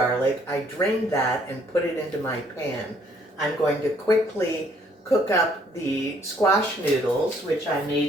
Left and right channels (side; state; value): both; normal; correlation 0.64